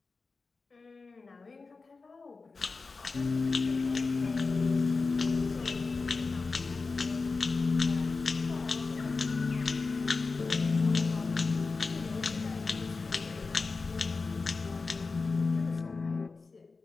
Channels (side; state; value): right; quieter; 4.1 dB